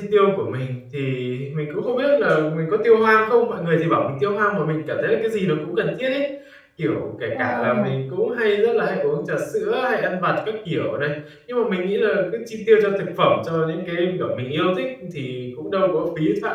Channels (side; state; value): both; identical; correlation 1.00